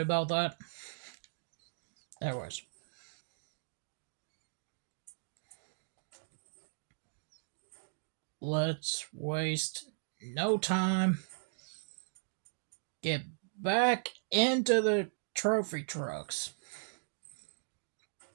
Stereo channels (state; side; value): silent; left; digital silence